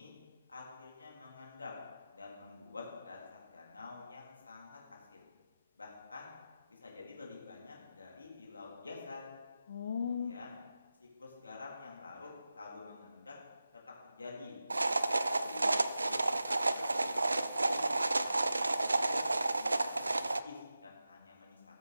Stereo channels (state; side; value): inverted; both; correlation -0.93